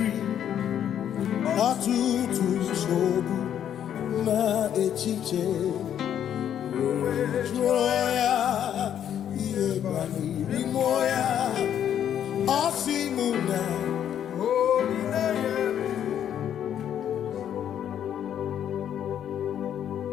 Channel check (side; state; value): right; quieter; 9.8 dB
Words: ọtụtụ nsogbu na echiche jụọ ya ihe banyere mmụọ ya ọ sị mụ na